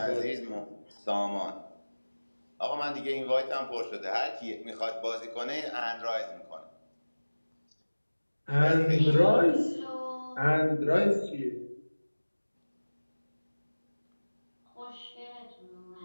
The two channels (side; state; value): both; inverted; correlation -1.00